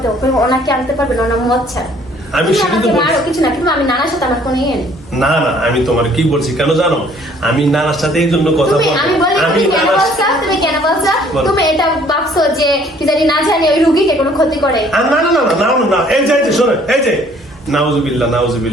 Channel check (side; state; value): both; normal; correlation 0.58